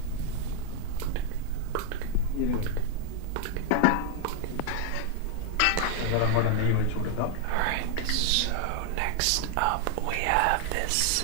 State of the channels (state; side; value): different; both; correlation 0.00